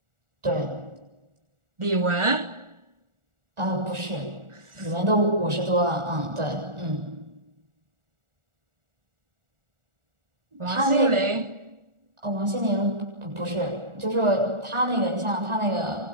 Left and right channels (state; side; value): late; left; 1.4 ms